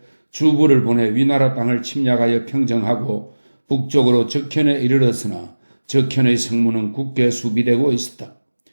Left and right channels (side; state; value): both; inverted; correlation -1.00